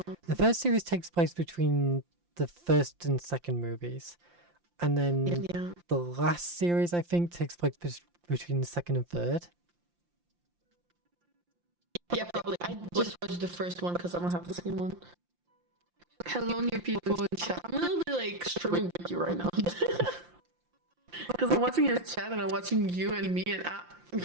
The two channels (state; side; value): late; left; 5.7 ms